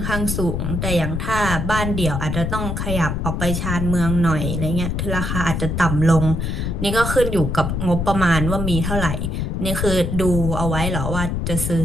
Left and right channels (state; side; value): noise; left; rumble, 2 dB below the sound